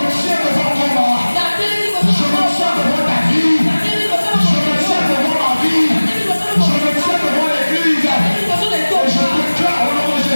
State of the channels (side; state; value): both; inverted; correlation -1.00